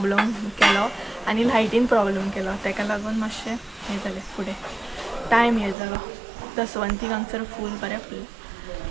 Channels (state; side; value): drops out; left; at 5.8 s